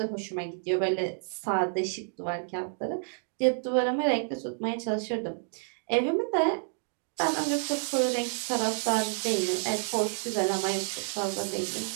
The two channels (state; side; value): silent; left; digital silence